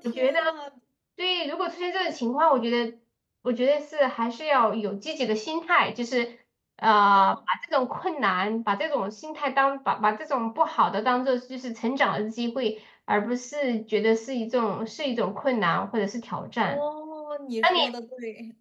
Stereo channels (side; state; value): both; identical; correlation 1.00